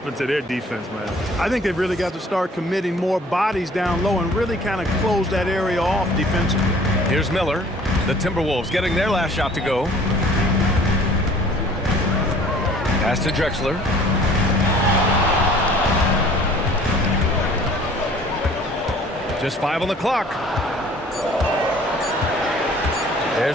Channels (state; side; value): normal; both; correlation 0.52